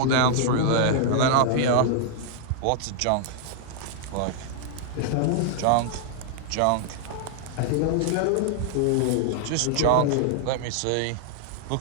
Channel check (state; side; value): different; both; correlation 0.00